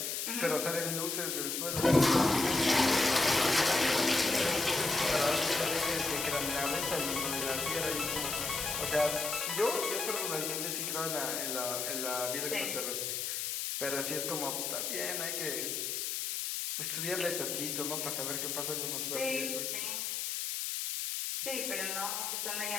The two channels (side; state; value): left; noise; hiss, 2 dB below the sound